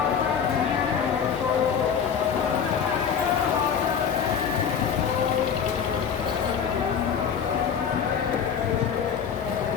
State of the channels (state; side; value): quieter; right; 7.3 dB